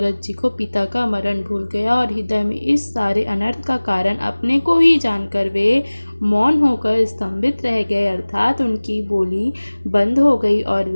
जी को पिता का मरण भूल गया और हृदय में इस सारे अनर्थ का कारण अपने को ही जानकर वे मौन होकर स्तंभित रह गए, अर्थात उनकी बोली बंद हो गई और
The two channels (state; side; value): inverted; both; correlation -1.00